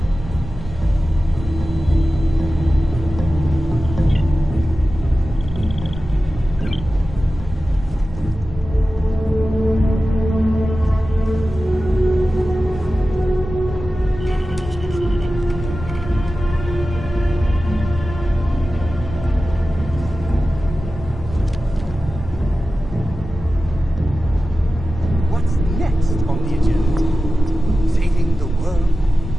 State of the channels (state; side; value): normal; both; correlation 0.94